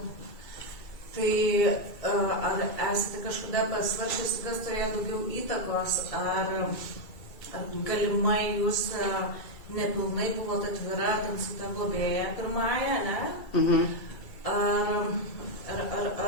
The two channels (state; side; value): late; right; 2.3 ms